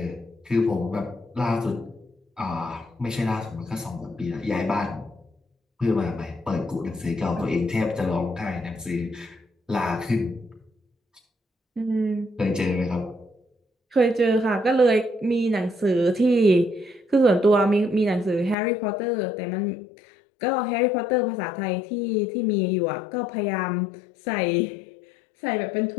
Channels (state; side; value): drops out; right; at 18.6 s